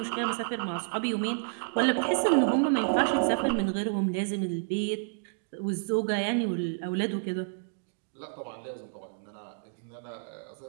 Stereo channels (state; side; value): silent; left; digital silence